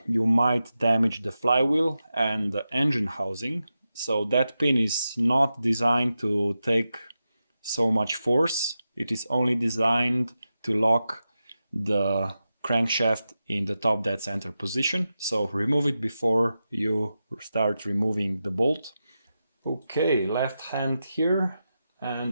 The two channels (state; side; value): inverted; both; correlation -0.90